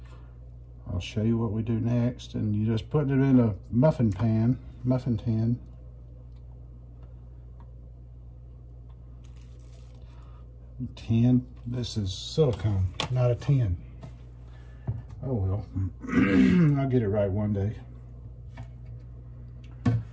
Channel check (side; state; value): both; identical; correlation 1.00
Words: I'll show you what we do next, and you just put it in a muffin tin. This is silicone, not a tin. Oh well, I'll get it right one day.